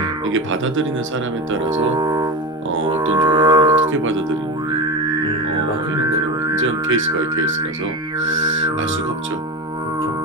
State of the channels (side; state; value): both; normal; correlation 0.22